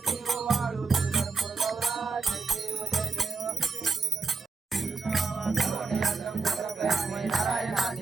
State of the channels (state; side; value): quieter; left; 4.6 dB